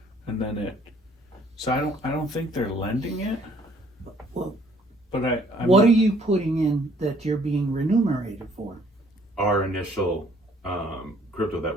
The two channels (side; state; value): both; normal; correlation 0.61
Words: and then it. So I don't think they're lending it, Well, but I'm what are you putting in that you're being remunerated for? Our initial crypto that